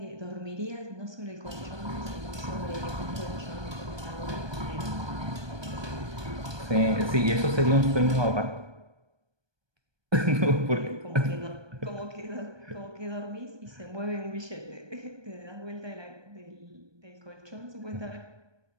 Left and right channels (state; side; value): late; left; 1.2 ms